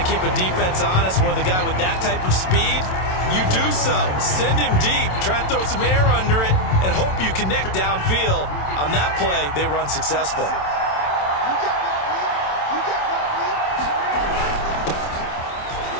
to keep a defense honest. With a guy with that type of speed, you do so. Send him deep. Try and throw some air under it and hope you connect downfield. On that play, they run successful.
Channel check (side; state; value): right; late; 27 ms